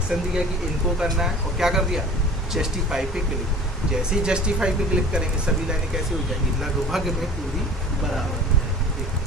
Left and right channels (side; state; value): both; normal; correlation 0.44